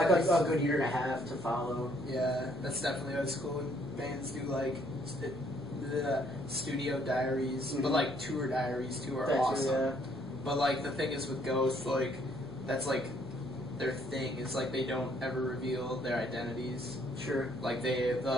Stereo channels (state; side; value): normal; both; correlation 0.67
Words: always, a good year and a half to follow. Yeah, that's definitely what's cool when bands do like the studio diaries, but like tour diaries too are awesome. Yeah. But like the thing is with Ghost, like that's like their thing. It's like they don't ever reveal their identities. Sure. Like